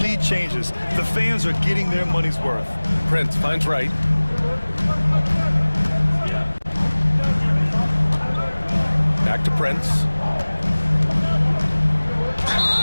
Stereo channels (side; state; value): both; inverted; correlation -1.00